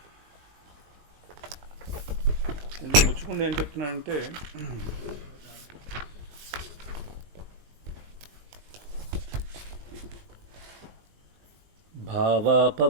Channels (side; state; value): left; late; 20 ms